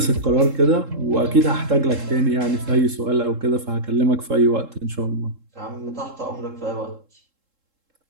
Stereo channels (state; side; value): late; left; 3.7 ms